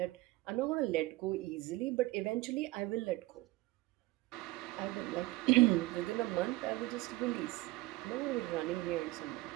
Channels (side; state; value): left; quieter; 19.8 dB